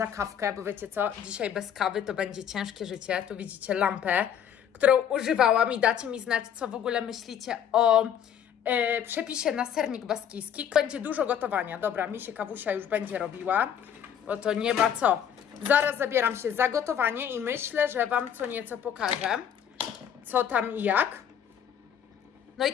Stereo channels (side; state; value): right; quieter; 8.9 dB